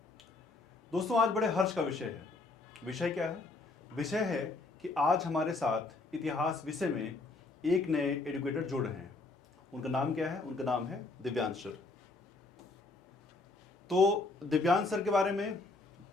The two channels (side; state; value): right; quieter; 3.4 dB